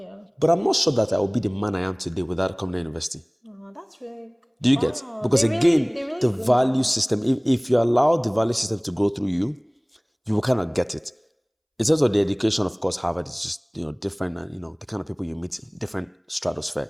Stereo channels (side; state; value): both; identical; correlation 1.00